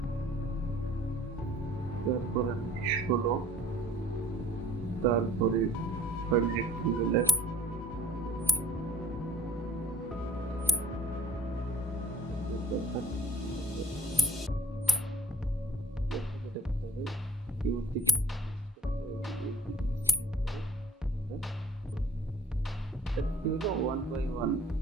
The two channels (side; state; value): both; normal; correlation 0.55